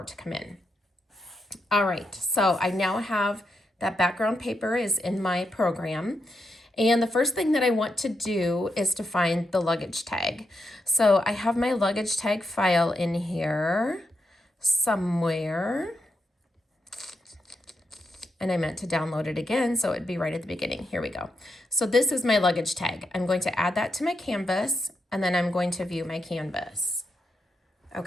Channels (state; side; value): normal; both; correlation 0.84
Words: it to come in. All right, so I now have that background paper is in my program. And the first thing that I want to do is to find the luggage tag. So I have my luggage tag file in here somewhere. And I meant to download it again, so it'd be right at the beginning. Here we go. So this is my luggage tag. I'm going to add that to my canvas, and then I'm going to view my canvas.